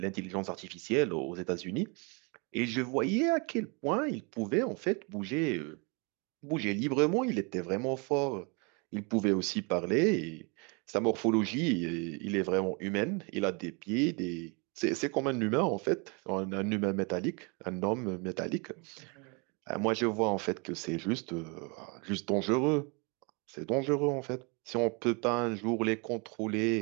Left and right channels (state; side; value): quieter; left; 32.0 dB